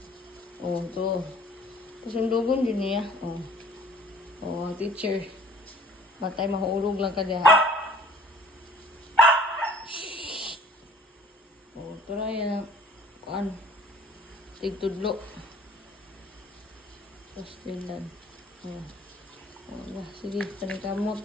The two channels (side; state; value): both; normal; correlation 0.52